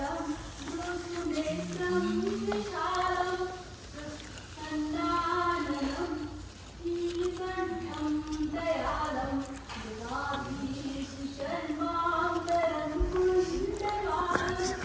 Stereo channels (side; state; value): both; identical; correlation 1.00